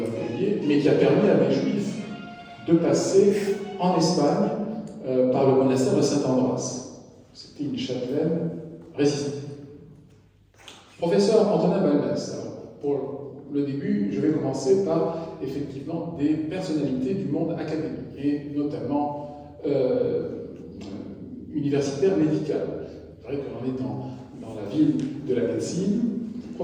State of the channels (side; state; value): both; identical; correlation 1.00